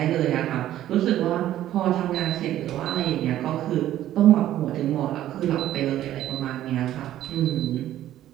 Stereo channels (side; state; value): left; quieter; 12.8 dB